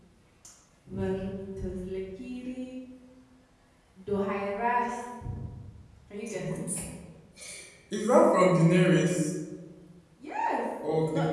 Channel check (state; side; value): identical; both; correlation 1.00